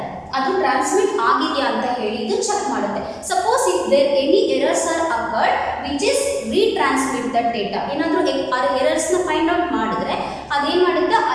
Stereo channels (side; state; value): both; identical; correlation 1.00